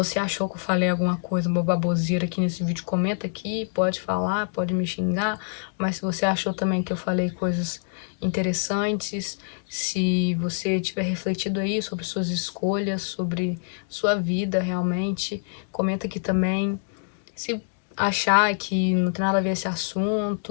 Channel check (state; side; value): silent; right; digital silence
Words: achou que eu falei alguma coisa, uma baboseira aqui nesse vídeo, comenta aqui, pode falar, pode me xingar, mas se você achou também que eu falei coisas interessantes, se você tiver refletido aí sobre suas escolhas, sobre sua vida realmente, comenta aqui também. Se achar que não tem nada a ver esse